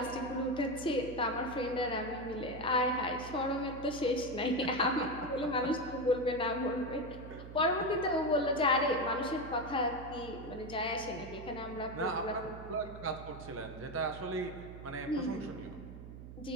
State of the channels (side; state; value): right; noise; hum, 12 dB below the sound